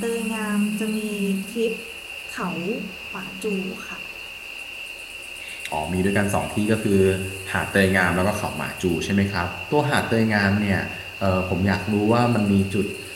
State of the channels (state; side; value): identical; both; correlation 1.00